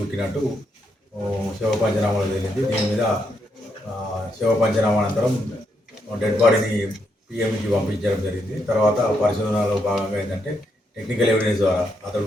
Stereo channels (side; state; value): both; normal; correlation 0.78